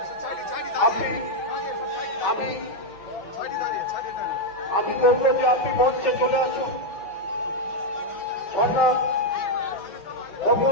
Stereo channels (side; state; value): right; late; 5.7 ms